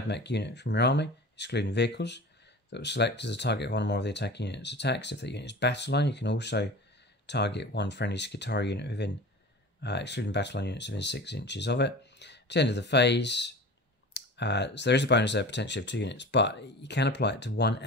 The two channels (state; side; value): normal; both; correlation 0.36